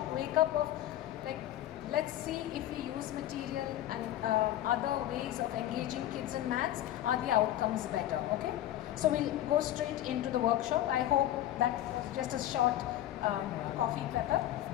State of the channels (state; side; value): quieter; right; 13.0 dB